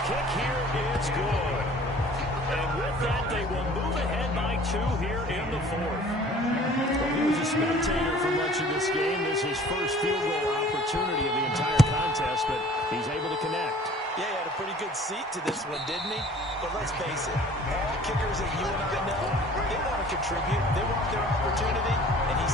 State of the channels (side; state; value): both; normal; correlation 0.50